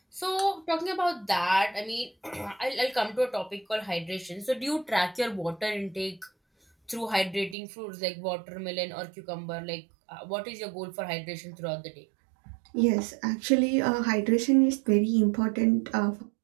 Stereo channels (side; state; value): left; drops out; at 7.6 s